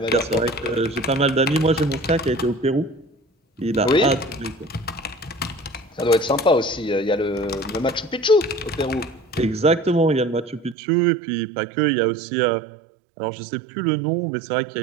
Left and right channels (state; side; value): drops out; left; at 10.8 s